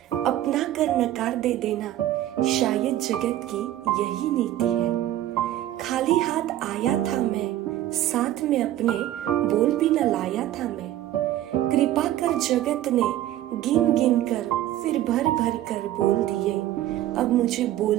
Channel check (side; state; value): left; quieter; 13.5 dB